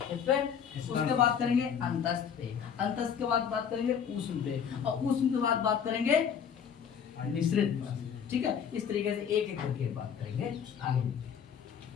किस पे, उसके बाद करेंगे अंतस्थ पे, अंतस्थ के बाद बात करेंगे ऊष्म पे, और ऊष्म के बाद बात करेंगे मिश्रित पे, ठीक है। इस तरीके से एक एक करके बात करेंगे आगे।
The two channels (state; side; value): quieter; right; 7.7 dB